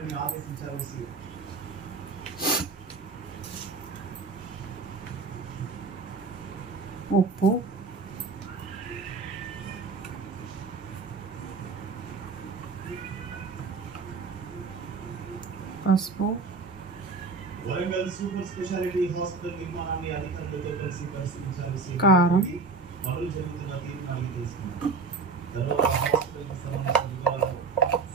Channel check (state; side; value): quieter; left; 4.3 dB